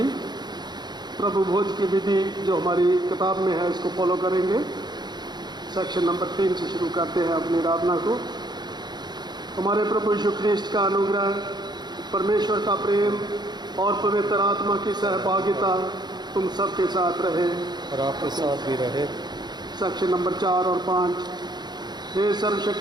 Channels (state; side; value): late; left; 0.21 ms